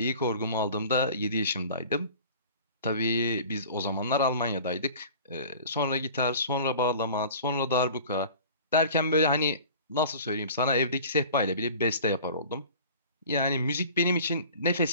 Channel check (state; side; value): inverted; both; correlation -0.43